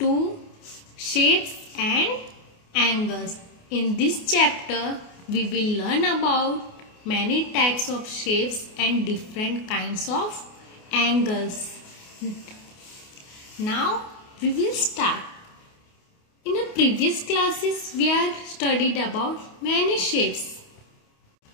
2, Shapes and Angles. In this chapter we will learn about many types of shapes and different kinds of angles. Now we will start. In the previous classes, we have studied about many shapes.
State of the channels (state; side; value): late; right; 28 ms